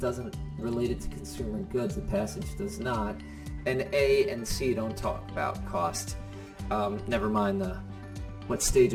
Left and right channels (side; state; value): both; identical; correlation 1.00